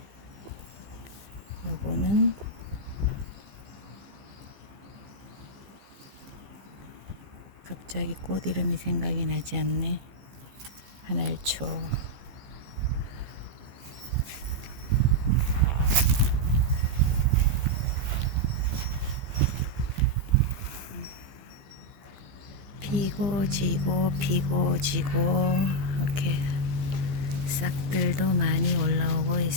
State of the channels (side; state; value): left; late; 15 ms